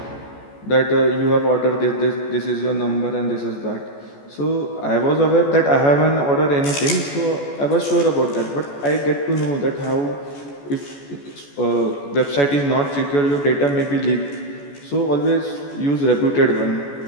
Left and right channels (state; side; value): late; right; 14 ms